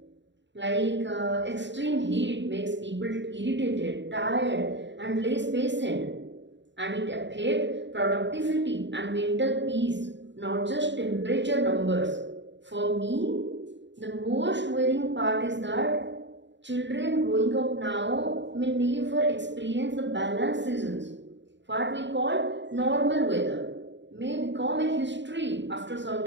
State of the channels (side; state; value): left; late; 0.53 ms